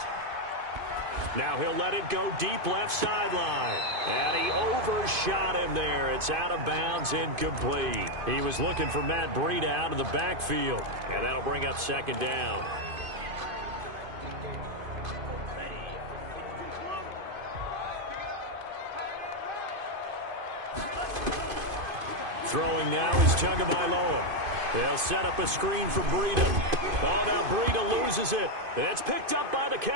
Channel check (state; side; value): late; left; 2.5 ms